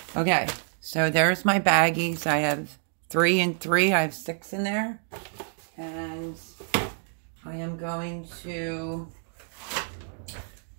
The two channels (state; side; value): silent; left; digital silence